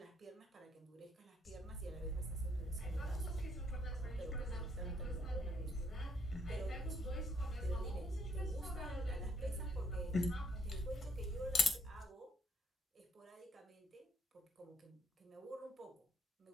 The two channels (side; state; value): both; normal; correlation 0.70